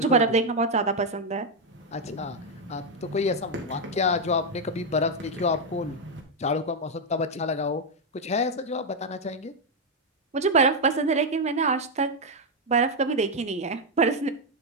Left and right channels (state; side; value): normal; both; correlation 0.02